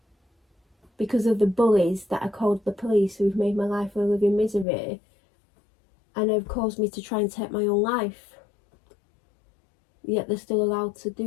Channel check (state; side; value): drops out; right; at 4.7 s